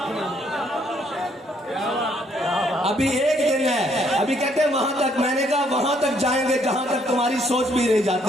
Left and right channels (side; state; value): both; normal; correlation 0.68